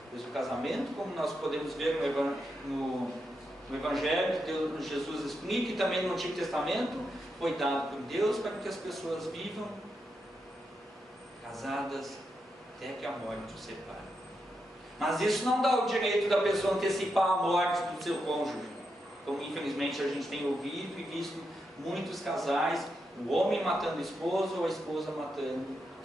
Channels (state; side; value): normal; both; correlation 0.85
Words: Pois o casamento, como nós podemos ver no Evangelho, Deus, Jesus explica, e também no Antigo Testamento, foi dado por Deus para que as pessoas vivam casadas até que a morte os separe. Mas isso não dá o direito da pessoa antecipar a morte do seu cônjuge, como infelizmente a gente tem ouvido e visto muitos casais, o homem matando a esposa ou a esposa matando,